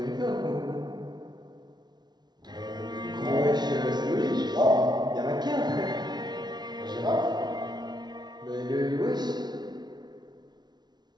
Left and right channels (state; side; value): late; left; 0.20 ms